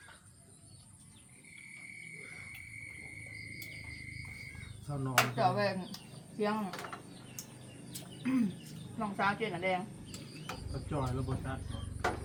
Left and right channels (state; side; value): identical; both; correlation 1.00